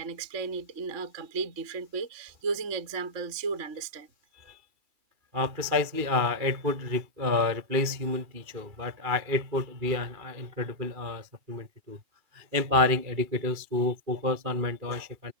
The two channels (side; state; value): left; late; 2.4 ms